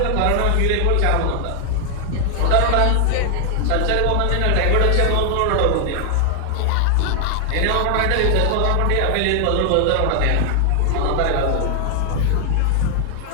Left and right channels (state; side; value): different; both; correlation 0.00